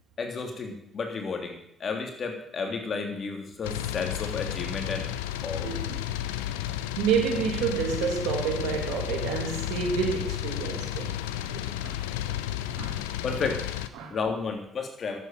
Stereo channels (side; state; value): both; normal; correlation 0.33